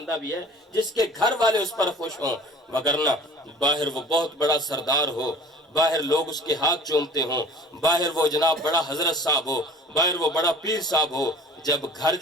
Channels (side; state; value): both; normal; correlation 0.46